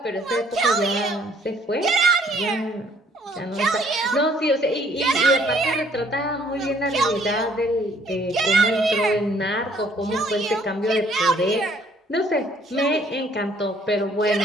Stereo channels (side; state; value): both; normal; correlation 0.61